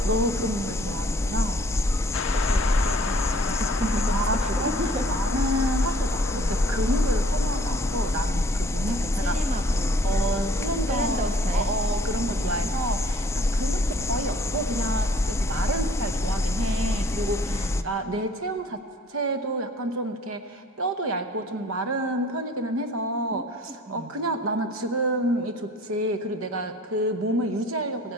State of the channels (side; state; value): both; normal; correlation 0.55